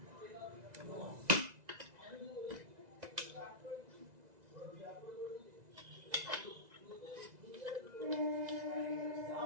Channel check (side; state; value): left; late; 2.0 ms